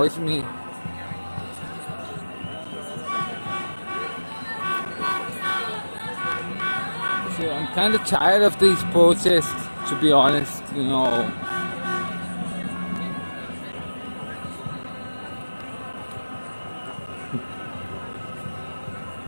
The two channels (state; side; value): inverted; both; correlation -1.00